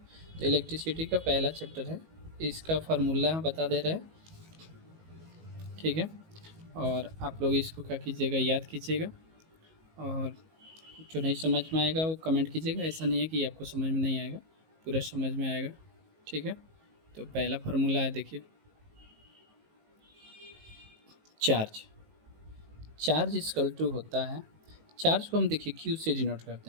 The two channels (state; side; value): late; left; 19 ms